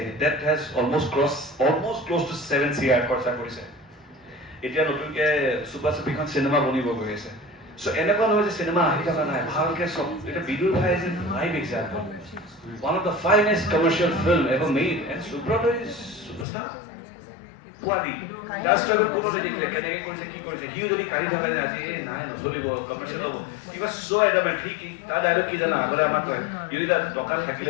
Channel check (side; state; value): right; drops out; at 16.4 s